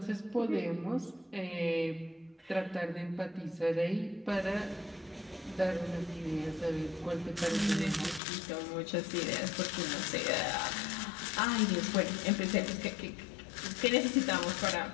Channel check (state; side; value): drops out; right; at 8.2 s